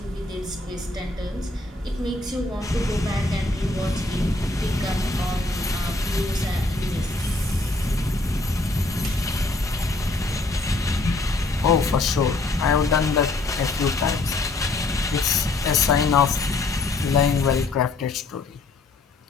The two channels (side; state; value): right; quieter; 3.2 dB